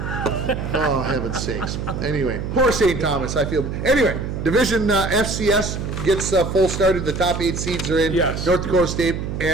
Oh, heaven's sakes. Anyway, poor St. Thomas, I feel. Anyway, Division FCS gets full started. The top 8 seeds are in. Yes. North Dakota State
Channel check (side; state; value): right; noise; hum, 5 dB below the sound